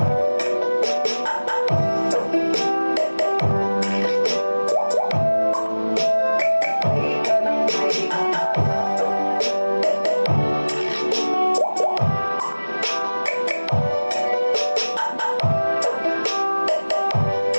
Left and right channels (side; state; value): both; inverted; correlation -1.00